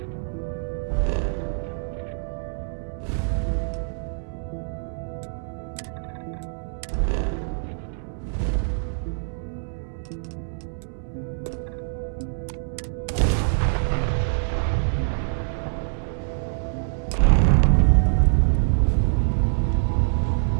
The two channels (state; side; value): silent; left; 62 dB below the other